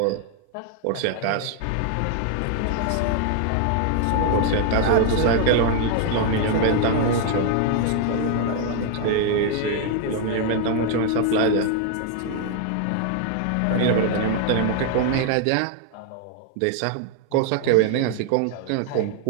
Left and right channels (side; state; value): both; different; correlation 0.00